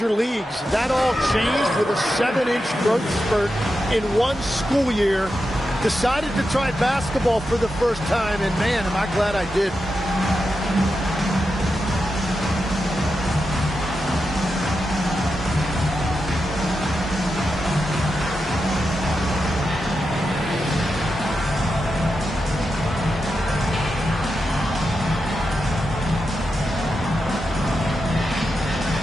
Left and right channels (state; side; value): normal; both; correlation 0.88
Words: leagues. That all changed with a 7-inch growth spurt in one school year. Decided to try basketball for the first time, and man, am I glad I did.